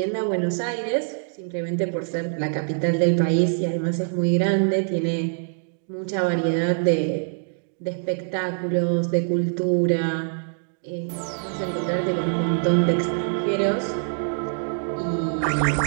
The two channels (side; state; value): left; silent; digital silence